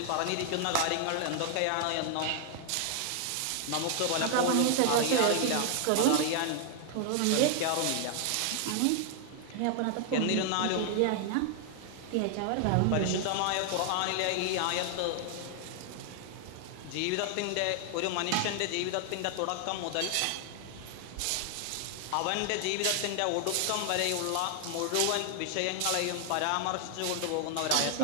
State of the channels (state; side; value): different; both; correlation 0.00